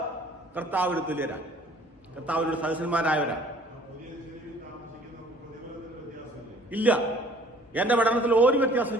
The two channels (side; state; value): both; normal; correlation 0.54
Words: കർത്താവിന് തുല്യരാണ്, കർത്താവിനോട് സദസ്യന്മാരായവരാണ്. ഇല്ല, എന്റെ പഠനത്തിൽ ഒരു വ്യത്യാസം